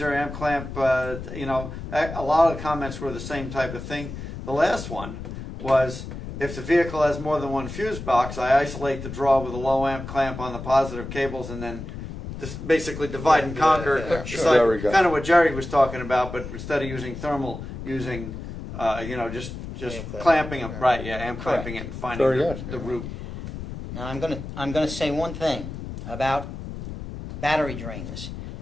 amp clamp, you know, a lot of the comments were the same type of thing. The last one was, if the vehicle has more than one fuse box, I isolate the draw with a low amp clamp on the positive cables and then just basically divide and conquer. yeah, It's sure. There we go. kind of what Jerry was talking about, but instead of using thermal, using, you know, just Amp clamp. clamping them, right, yeah, amp Correct. clamping it and finding Very the, good. the root. Now, I'm gonna say one thing about battery drains.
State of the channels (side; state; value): left; noise; rumble, 9 dB below the sound